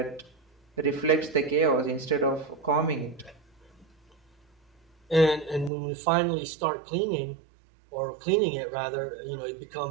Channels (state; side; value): drops out; left; at 5.7 s